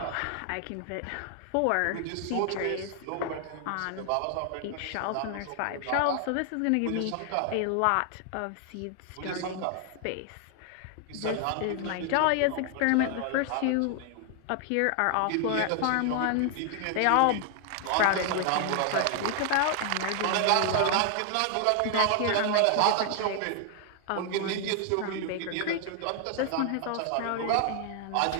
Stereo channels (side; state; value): both; different; correlation 0.00